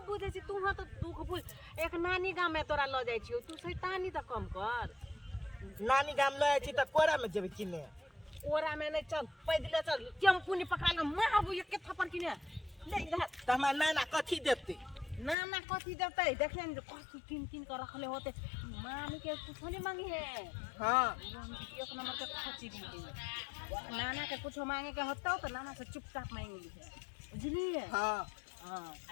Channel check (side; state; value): right; drops out; at 15.4 s